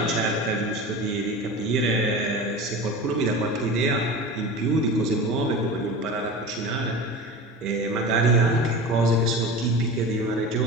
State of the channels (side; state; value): both; normal; correlation 0.32